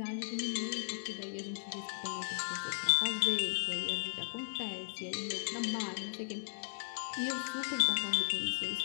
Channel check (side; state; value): right; silent; digital silence